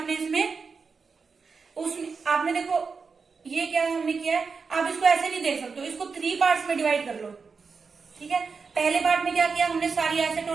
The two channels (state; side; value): quieter; left; 5.0 dB